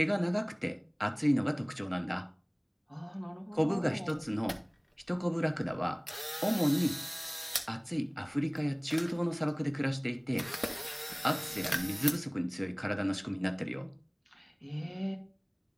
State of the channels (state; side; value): identical; both; correlation 1.00